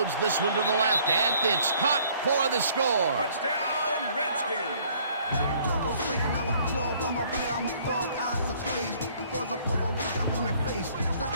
this one to the left, and it's caught for the score. Touchdown, Redskins.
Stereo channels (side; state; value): both; inverted; correlation -0.59